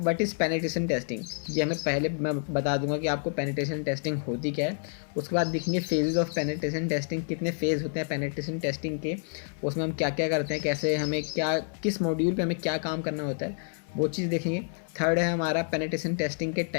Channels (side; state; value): right; silent; 59 dB below the other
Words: इज़ पेनिट्रेशन टेस्टिंग, ये हमें पहले मैं बता दूंगा कि आपको पेनिट्रेशन टेस्टिंग होती क्या है। उसके बाद देखेंगे फेजेस ऑफ पेनिट्रेशन टेस्टिंग, कितने फेज़ होते हैं पेनिट्रेशन टेस्टिंग के, उसमें हम क्या क्या करते हैं, कैसे हमें क्या किस मॉड्यूल पे हमें क्या काम करना होता है, वो चीज़ देखेंगे। थर्ड है हमारा पेनिट्रेशन टेस्टिंग के